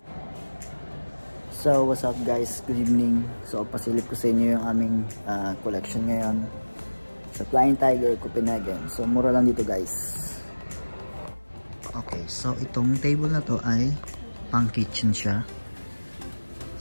So what's up guys, good evening. So pasilip ko sa inyo yung aming collection ngayon sa Flying Tiger Copenhagen. So mura lang dito guys. Okay, so itong table na to ay pang kitchen siya.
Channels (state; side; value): inverted; both; correlation -1.00